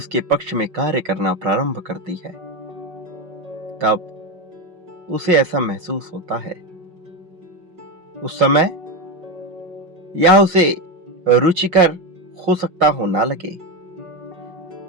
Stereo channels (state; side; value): late; left; 5.5 ms